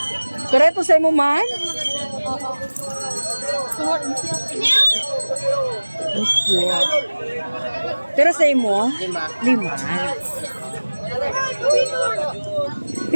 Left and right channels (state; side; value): inverted; both; correlation -1.00